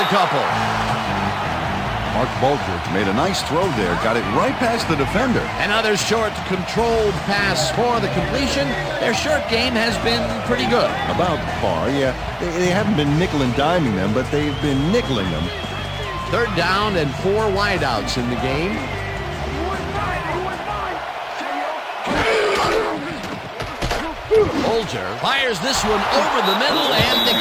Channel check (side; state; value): both; identical; correlation 1.00